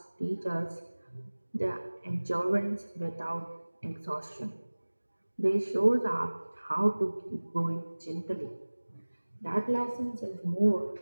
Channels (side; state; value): both; inverted; correlation -1.00